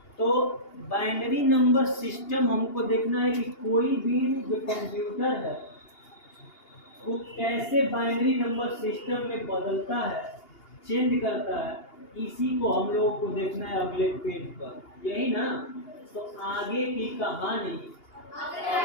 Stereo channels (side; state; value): right; late; 2.8 ms